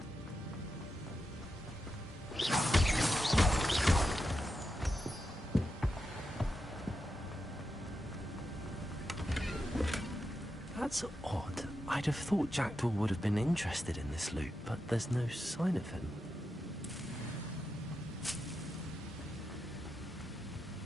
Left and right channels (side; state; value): both; normal; correlation 0.87